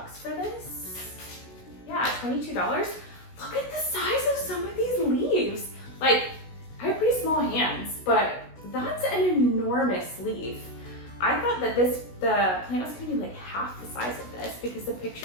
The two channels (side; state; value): right; late; 16 ms